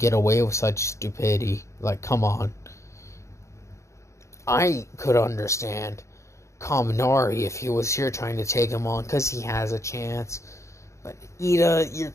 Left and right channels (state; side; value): late; right; 0.14 ms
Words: away with such stupidity. Like, come on." I could understand Kaminari if he was here trying to take him on, because he has a chance. But Ida, you're